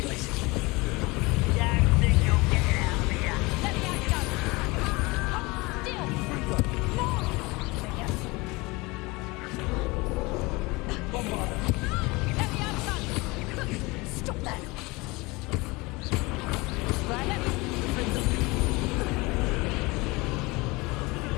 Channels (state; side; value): quieter; right; 24.0 dB